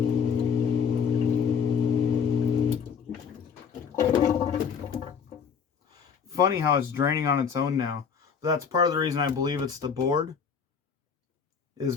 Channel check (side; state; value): right; quieter; 6.6 dB